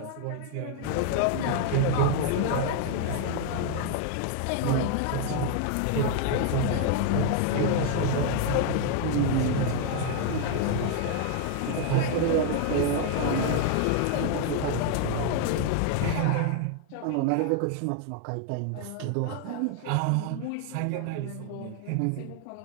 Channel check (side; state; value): both; different; correlation 0.00